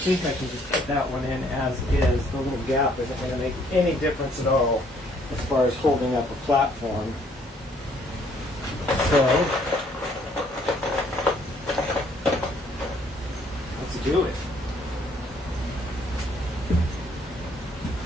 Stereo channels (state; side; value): normal; both; correlation 0.64